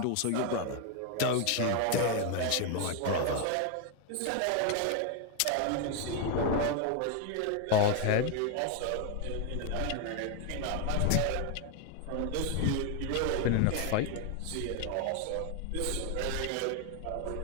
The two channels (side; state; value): both; different; correlation 0.01